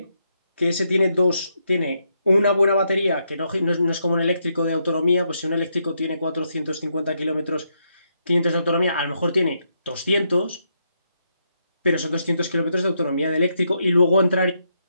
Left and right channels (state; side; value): inverted; both; correlation -0.79